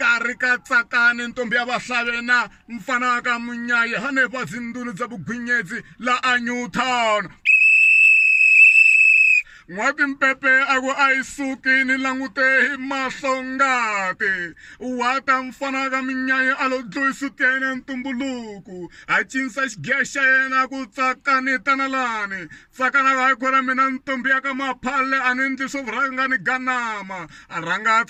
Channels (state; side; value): identical; both; correlation 1.00